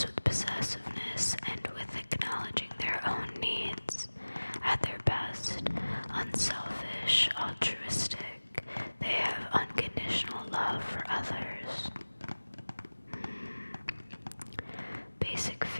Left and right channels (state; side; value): inverted; both; correlation -1.00